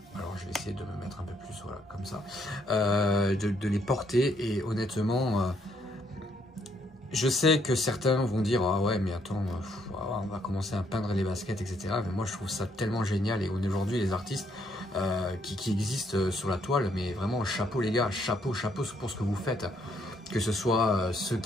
Alors, je vais essayer de me mettre un peu plus, voilà, comme ça, de les porter. Et honnêtement, je sais que certains vont dire ah ouais, mais attends, on va commencer à peindre les baskets, etc. Mais moi, je trouve ça tellement génial. Et aujourd'hui, les artistes qui existent sur la toile, mais vraiment chapeau les gars, chapeau pour ce que vous faites. Que ce soit ceux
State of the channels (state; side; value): normal; both; correlation 0.71